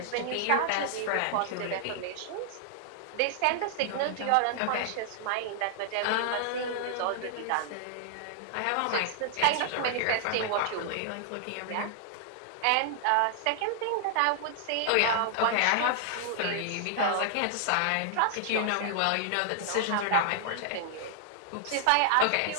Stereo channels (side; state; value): both; different; correlation -0.01